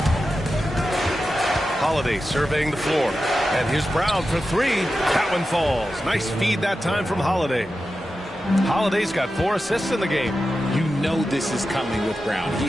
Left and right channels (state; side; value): normal; both; correlation 0.92